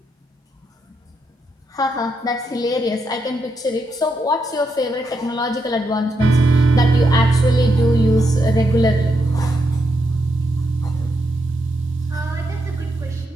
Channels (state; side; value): normal; both; correlation 0.81